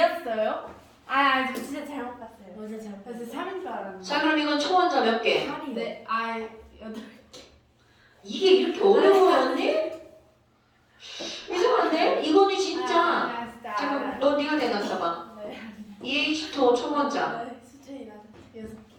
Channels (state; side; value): identical; both; correlation 1.00